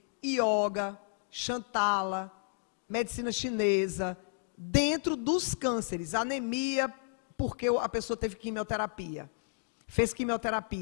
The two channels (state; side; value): silent; right; digital silence